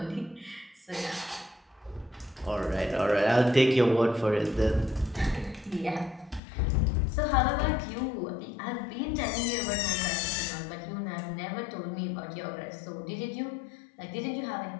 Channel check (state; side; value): drops out; right; at 6.4 s